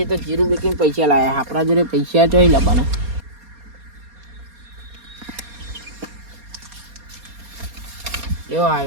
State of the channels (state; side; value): late; left; 4.2 ms